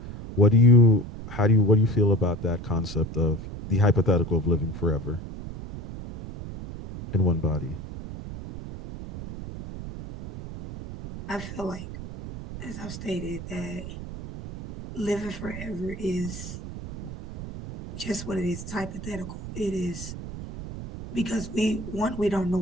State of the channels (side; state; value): right; noise; rumble, 10 dB below the sound